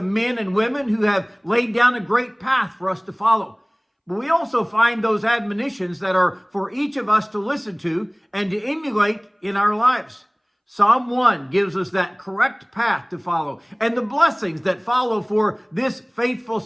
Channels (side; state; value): both; identical; correlation 1.00